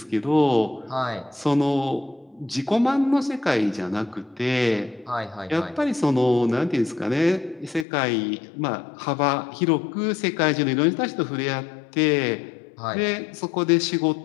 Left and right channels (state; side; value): drops out; right; at 7.9 s